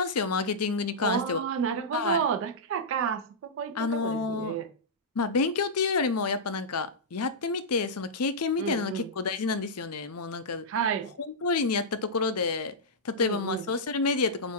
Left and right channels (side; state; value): both; normal; correlation -0.11